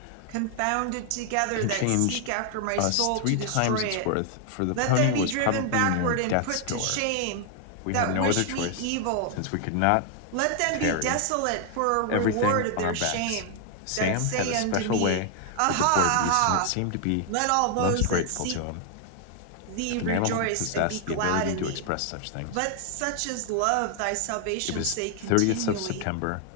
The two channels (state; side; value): different; both; correlation 0.00